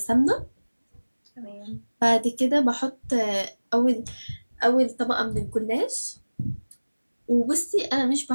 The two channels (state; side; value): inverted; both; correlation -1.00